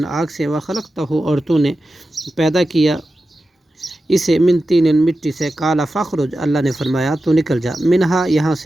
آگ سے، وخلقتہ اور تو نے پیدا کیا اسے، من طین مٹی سے، قال فاخرج اللہ نے فرمایا تو نکل جا، منہا یہاں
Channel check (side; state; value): both; normal; correlation 0.92